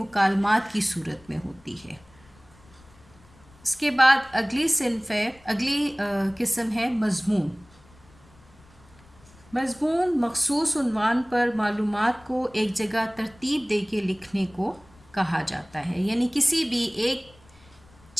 کی صورت میں ہوتی ہے۔ اس کے بعد اگلی قسم ہے مضمون۔ مضمون مخصوص عنوان پر معلومات کو ایک جگہ ترتیب دے کے لکھنے کو کہا جاتا ہے، یعنی کسی بھی ایک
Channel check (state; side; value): noise; left; rumble, 27 dB below the sound